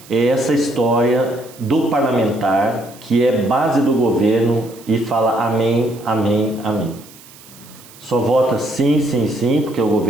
é essa história do parlamentar que é base do governo e fala amém, amém, amém. Só vota sim, sim, sim, porque o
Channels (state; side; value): noise; right; hiss, 22 dB below the sound